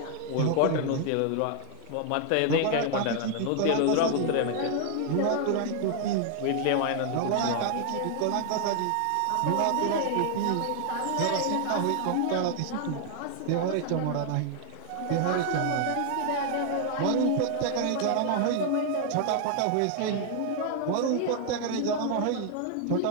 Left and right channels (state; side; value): different; both; correlation 0.00